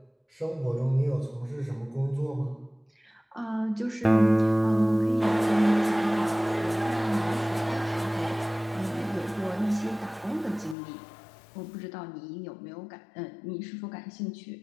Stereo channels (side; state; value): right; drops out; at 10.8 s